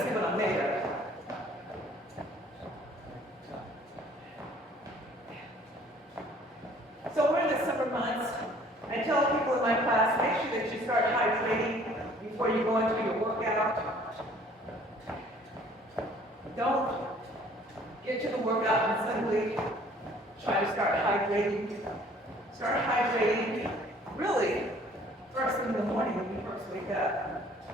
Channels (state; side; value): normal; both; correlation 0.55